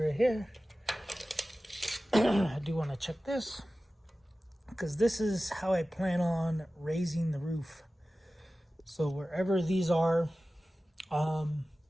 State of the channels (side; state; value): both; normal; correlation 0.96